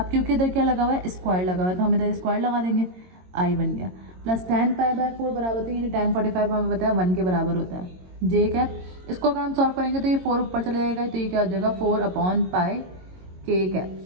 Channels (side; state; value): left; late; 22 ms